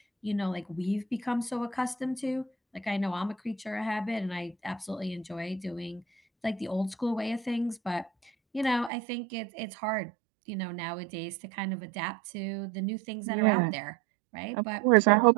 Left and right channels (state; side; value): drops out; left; at 8.9 s